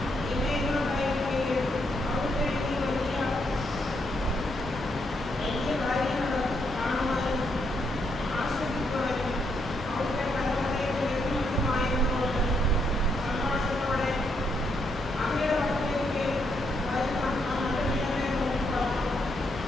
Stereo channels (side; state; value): both; normal; correlation 0.77